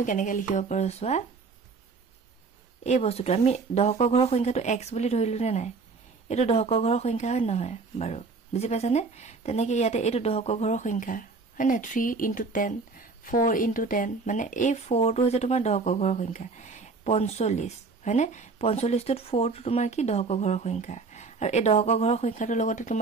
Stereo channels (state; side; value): quieter; left; 4.4 dB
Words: কেনেকৈ লিখিব পাৰো চোৱা এই বস্তুটো আমি দশকৰ ঘৰৰ সংখ্যাটো x বুলি ধৰিলো নে নাই এটো দশকৰ ঘৰৰ সংখ্যা হয় নহয় বাৰু বুজি পাইছানে তেনেকৈ ইয়াতে এটো দশকৰ ঘৰৰ সংখ্যা হয় না 3 into 10 4 into 10 মানে এই 4 টো হৈছে তোমাৰ দশকৰ ঘৰৰ সংখ্যা 45 হয়নে 45 টোত 4 টো তোমাৰ কি দশকৰ ঘৰৰ সংখ্যা আৰু এই দশকৰ ঘৰৰ সংখ্যাটোৰ লগতে